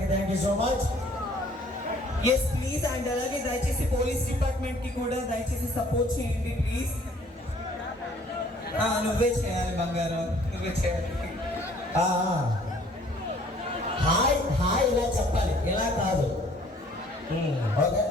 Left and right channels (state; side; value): normal; both; correlation 0.57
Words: thank you so much. Yes please. And అలాగే దయచేసి పోలీస్ డిపార్ట్మెంట్ కి కూడా దయచేసి సపోర్ట్ చేయండి ప్లీజ్. నువ్వే చేయాలి బంగారం, నువ్వే చేయాలి. హాయ్ హాయ్ ఇలా చెప్పాలి, ఇలా కాదు. ఓకే